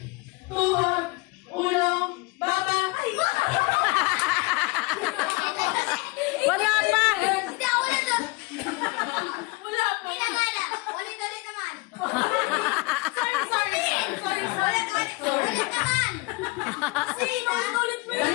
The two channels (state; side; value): quieter; right; 25.4 dB